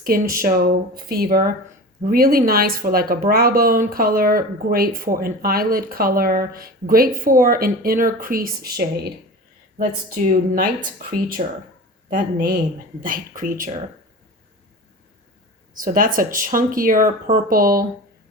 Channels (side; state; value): both; normal; correlation 0.33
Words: Show Fever. Really nice for like a brow bone color, great for an eyelid color, great for an inner crease shade. Let's do Night Creature. That name, Night Creature. So that's a chunkier purple